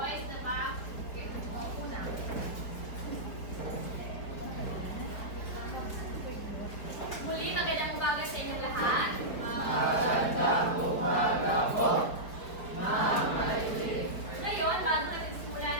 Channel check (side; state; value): right; late; 4.9 ms